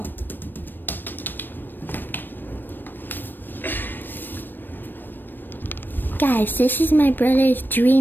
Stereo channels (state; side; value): late; right; 0.093 ms